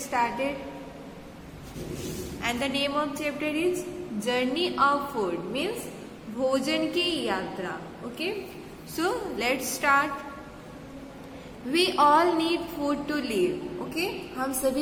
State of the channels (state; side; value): identical; both; correlation 1.00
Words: started. And the name of chapter is Journey of Food, means भोजन की यात्रा. Okay? So, let's start. We all need food to live. Okay? हम